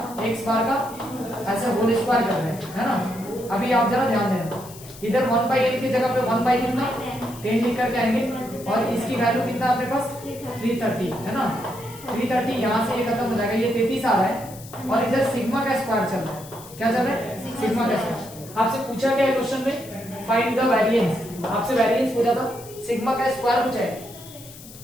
एक्स बार का ऐसे होल स्क्वायर कर रहे हैं, है ना। अभी आप जरा ध्यान देना, इधर 1/n की जगह पे 1 बाई कितना 10 लिख करके आएंगे, और इसकी वैल्यू कितना अपने पास 330, है ना। 330 यहाँ से ये खत्म हो जाएगा, ये 33 आ रहा है, और इधर सिग्मा का स्क्वायर चल रहा है। क्या चल रहा है, सिग्मा का स्क्वायर। आपसे पूछा गया है क्वेश्चन में फाइंड द वेरिएंस, आपसे वेरिएंस पूछा था, सिग्मा का स्क्वायर पूछा है।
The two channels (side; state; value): left; noise; hiss, 18 dB below the sound